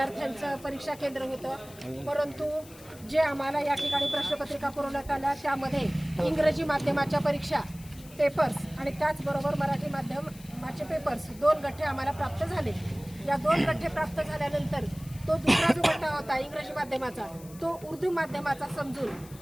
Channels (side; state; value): left; noise; hiss, 21 dB below the sound